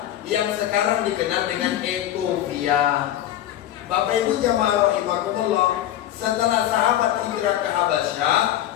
yang sekarang dikenal dengan Ethiopia. Bapak Ibu jamaah rahimakumullah, setelah sahabat hijrah ke Habasyah,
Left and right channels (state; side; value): quieter; right; 12.4 dB